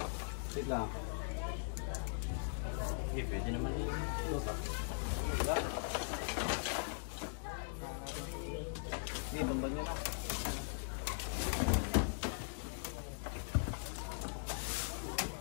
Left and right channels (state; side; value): silent; right; digital silence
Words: Sit lang. Sige, pwede naman yung lupa. Sige, tumbang nyo na.